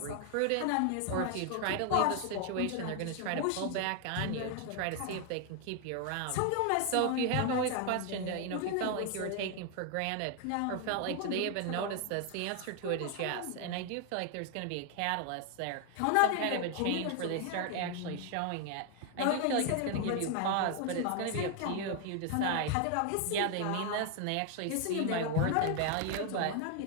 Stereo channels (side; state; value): both; different; correlation 0.00